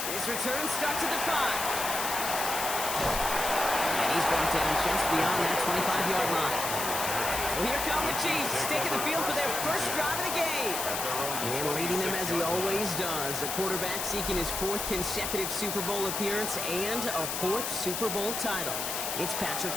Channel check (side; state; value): left; noise; hiss, 2 dB below the sound